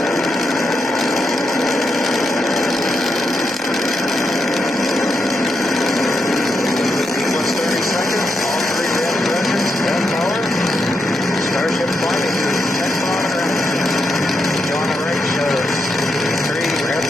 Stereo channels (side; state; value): both; normal; correlation 0.83